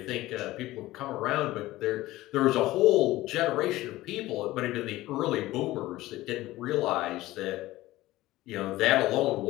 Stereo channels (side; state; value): right; quieter; 17.1 dB